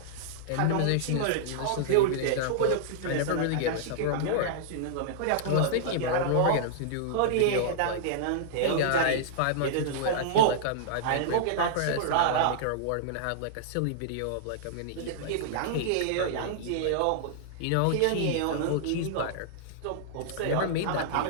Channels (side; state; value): both; different; correlation -0.01